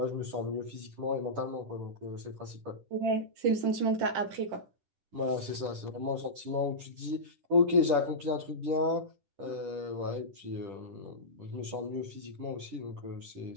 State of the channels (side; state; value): left; late; 10 ms